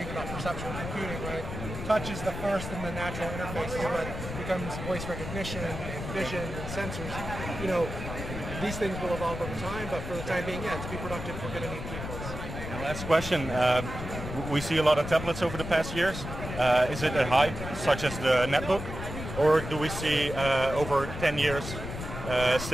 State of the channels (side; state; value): left; noise; rumble, 7 dB below the sound